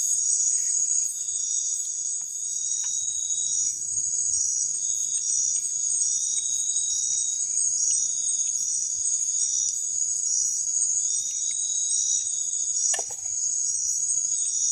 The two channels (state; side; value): identical; both; correlation 1.00